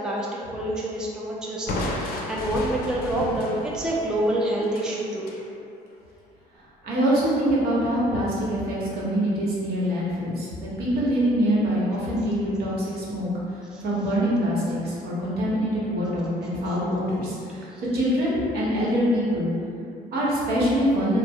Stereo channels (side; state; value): both; normal; correlation 0.60